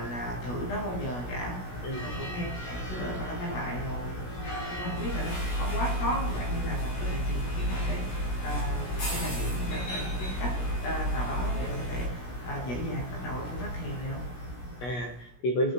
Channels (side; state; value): right; late; 16 ms